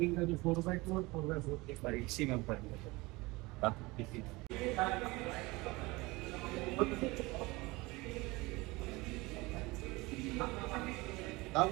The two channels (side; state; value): left; quieter; 22.8 dB